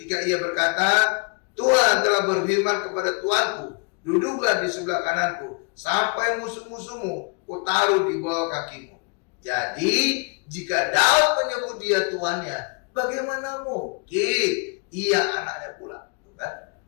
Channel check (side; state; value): right; quieter; 34.0 dB